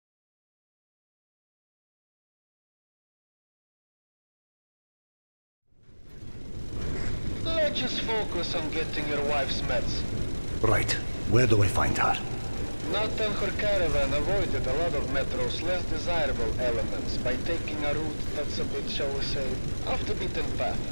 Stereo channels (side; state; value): both; inverted; correlation -1.00